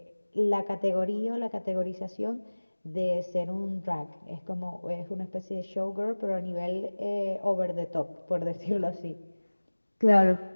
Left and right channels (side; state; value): both; inverted; correlation -1.00